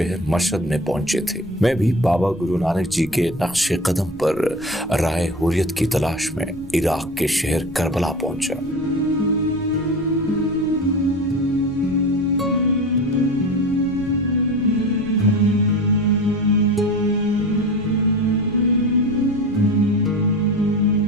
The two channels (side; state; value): right; noise; rumble, 19 dB below the sound